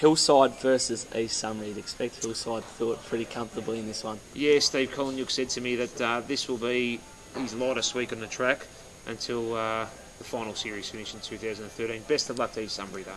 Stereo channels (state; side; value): identical; both; correlation 1.00